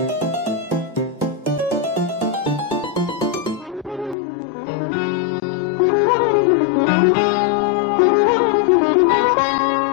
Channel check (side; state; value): right; drops out; at 4.2 s